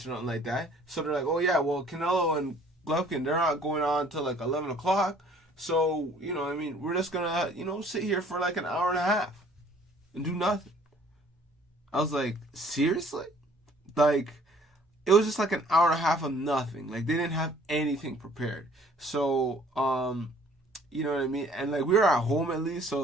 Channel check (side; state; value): both; normal; correlation 0.56